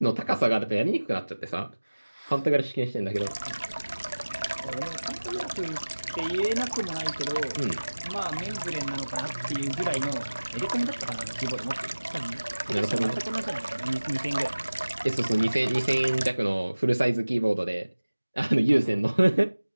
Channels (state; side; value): inverted; both; correlation -1.00